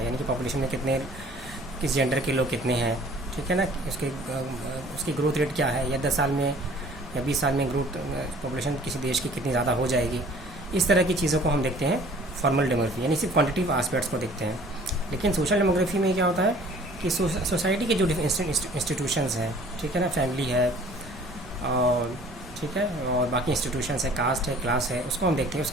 यानी कि पॉपुलेशन में कितने किस जेंडर के लोग कितने हैं. ठीक है ना. उसकी ग्रोथ रेट क्या है, या 10 साल में या 20 साल में ग्रोथ पॉपुलेशन किसी देश की कितनी ज़्यादा हो जाएगी. इस तरह की चीज़ों को हम देखते हैं फॉर्मल डेमोग्राफी. यानी सिर्फ क्वांटिटिव आस्पेक्ट्स को देखते हैं. लेकिन सोशल डेमोग्राफी में क्या होता है कि सोसाइटी के जो इंस्टीट्यूशंस हैं. ठीक है ना. फैमिली है और ठीक है, और बाकी इंस्टीट्यूशंस है, कास्ट है, क्लास है, उसको हम देखते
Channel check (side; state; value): right; noise; rumble, 17 dB below the sound